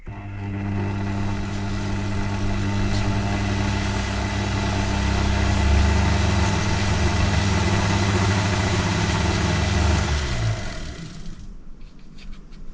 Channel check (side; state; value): both; identical; correlation 1.00